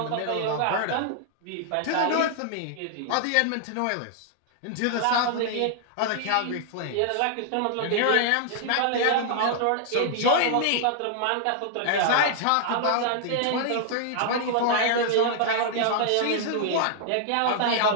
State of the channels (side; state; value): both; different; correlation -0.01